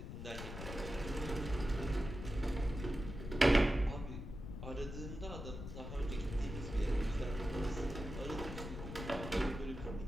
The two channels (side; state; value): left; noise; rumble, 8 dB below the sound